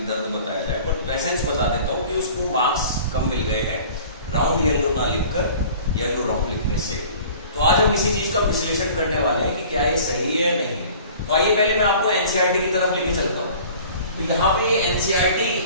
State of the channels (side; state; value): both; inverted; correlation -0.46